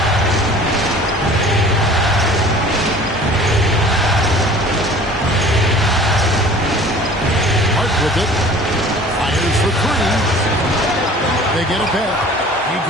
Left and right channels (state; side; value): normal; both; correlation 0.47